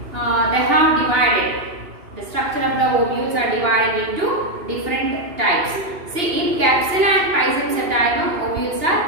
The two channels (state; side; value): late; left; 2.8 ms